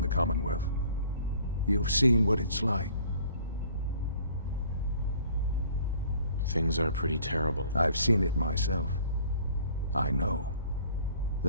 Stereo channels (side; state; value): both; inverted; correlation -0.54